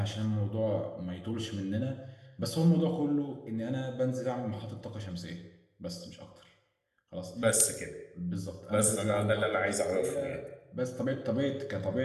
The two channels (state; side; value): identical; both; correlation 1.00